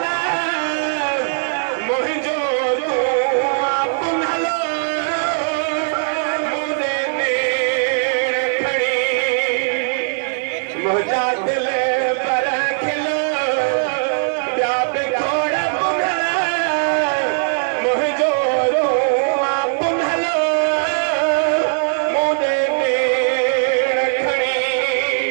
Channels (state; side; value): silent; left; digital silence